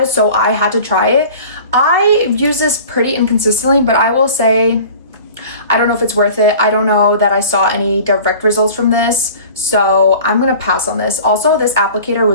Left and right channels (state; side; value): inverted; both; correlation -0.43